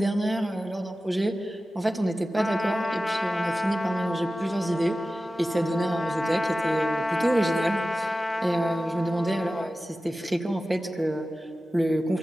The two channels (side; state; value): both; normal; correlation 0.95